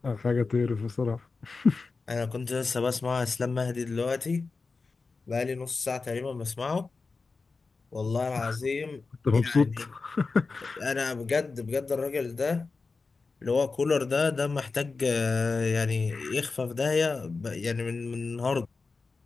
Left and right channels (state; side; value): quieter; right; 4.2 dB